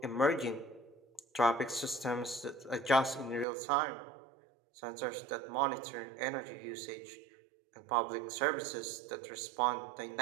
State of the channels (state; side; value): drops out; left; at 3.5 s